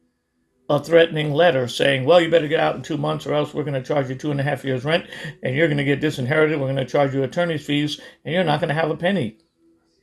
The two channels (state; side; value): identical; both; correlation 1.00